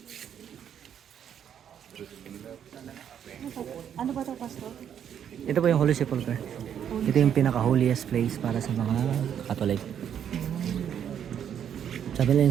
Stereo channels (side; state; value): left; quieter; 9.0 dB